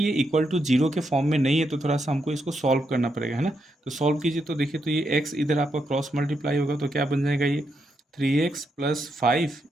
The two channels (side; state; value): both; normal; correlation 0.81